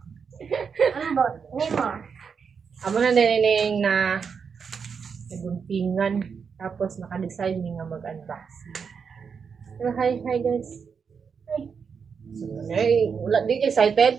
Ambot, nimo. Amo na nining na naguntingan tapos naka-decide mi nga mag-unboxing. So, hi guys. Ay, wala di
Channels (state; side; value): quieter; left; 6.2 dB